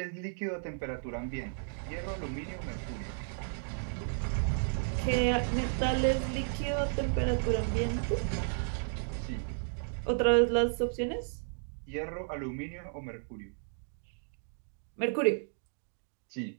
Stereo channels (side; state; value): left; silent; digital silence